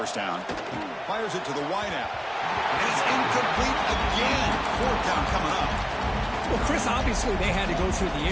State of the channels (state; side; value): identical; both; correlation 1.00